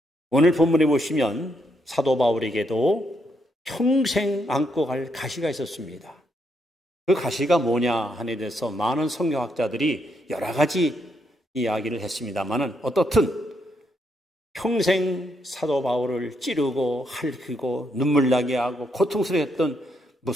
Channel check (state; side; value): normal; both; correlation 0.77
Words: 오늘 본문에 보시면 사도 바울에게도 평생 안고 갈 가시가 있었습니다. 그 가시가 뭐냐 하는 데 대해서 많은 성경학자들이 여러 가지 이야기를 했습니다만은 어떻든 평생 사도 바울을 찌르고 핥히고 눈물 나게 하고 고통스러웠던